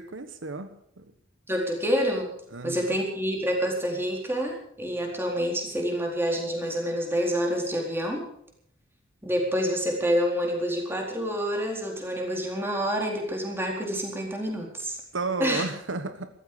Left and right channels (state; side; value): normal; both; correlation 0.54